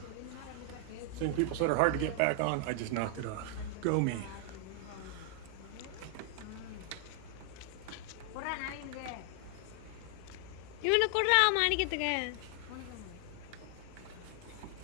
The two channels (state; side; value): different; both; correlation 0.00